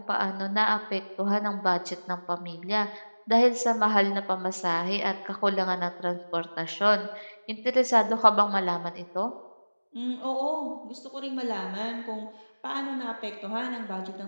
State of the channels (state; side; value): inverted; both; correlation -1.00